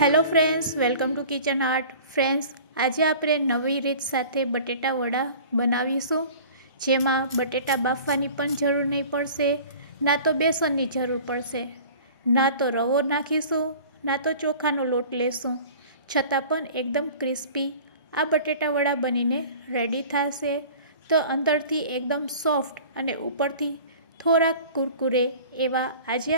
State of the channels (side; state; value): both; inverted; correlation -0.43